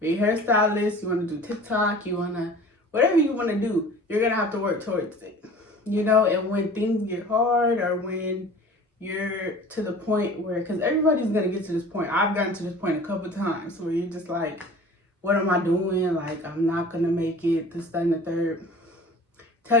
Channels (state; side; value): normal; both; correlation 0.43